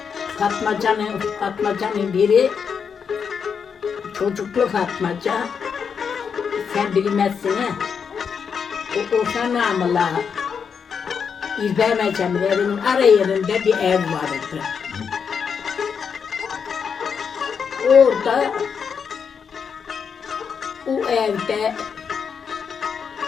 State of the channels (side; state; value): right; quieter; 6.5 dB